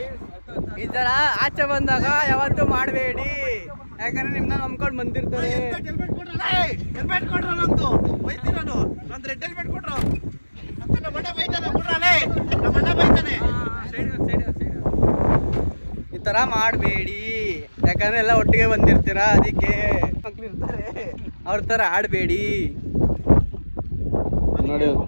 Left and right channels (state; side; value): inverted; both; correlation -1.00